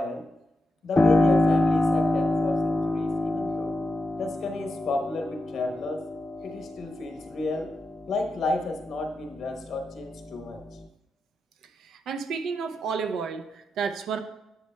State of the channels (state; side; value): normal; both; correlation 0.88